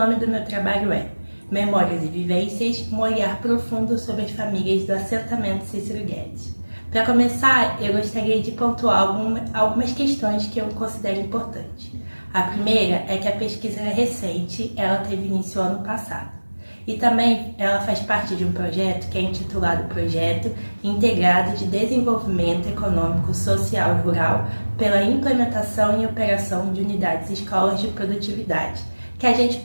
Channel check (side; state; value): both; inverted; correlation -1.00